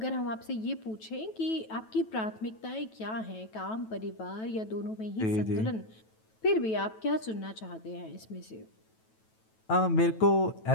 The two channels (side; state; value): right; late; 9.2 ms